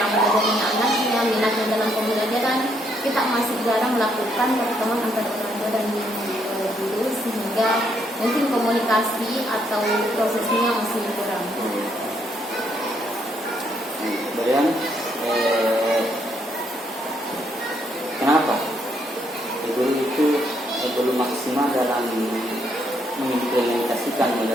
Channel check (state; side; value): normal; both; correlation 0.73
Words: belajarnya anaknya, minatnya dalam pembelajaran. Kita masih jarang melakukan pertemuan antara orang tua dan guru, sehingga mungkin komunikasi atau prosesnya masih kurang. Kemudian kenapa guru itu belum maksimal dalam mengimplementasikan